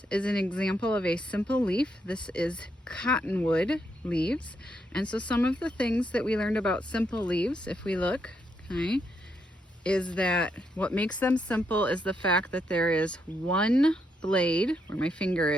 is an example of a simple leaf. This is cottonwood leaves. And so some of the things that we learned about simple leaves, if we look, okay, is that what makes them simple is the fact that there is one blade, where my finger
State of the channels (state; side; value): normal; both; correlation 0.78